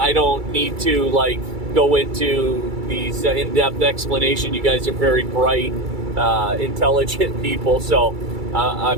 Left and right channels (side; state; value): left; late; 2.3 ms